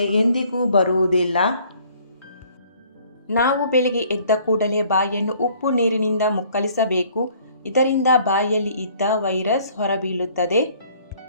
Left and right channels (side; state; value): both; inverted; correlation -0.58